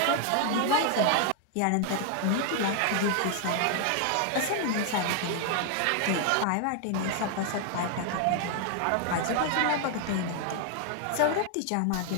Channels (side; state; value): both; different; correlation 0.00